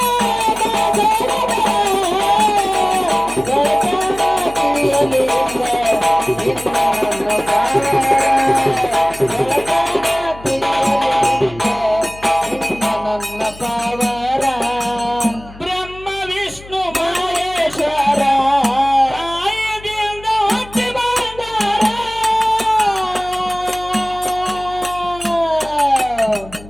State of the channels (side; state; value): left; noise; hum, 19 dB below the sound